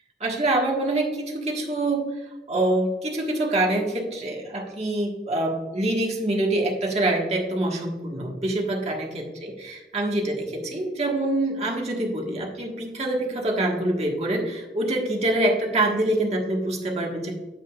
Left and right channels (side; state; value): both; normal; correlation 0.53